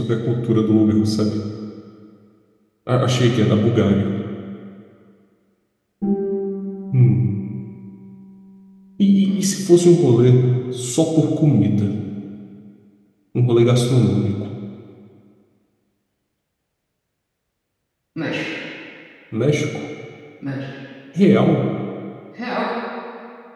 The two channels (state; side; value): identical; both; correlation 1.00